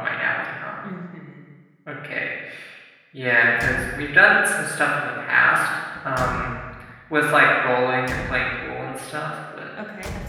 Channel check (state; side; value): identical; both; correlation 1.00